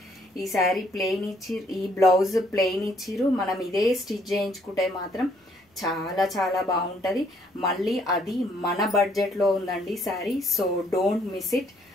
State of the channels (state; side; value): normal; both; correlation 0.66